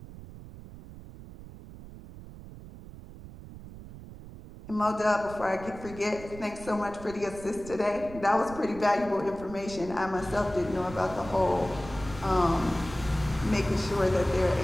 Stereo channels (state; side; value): noise; right; rumble, 15 dB below the sound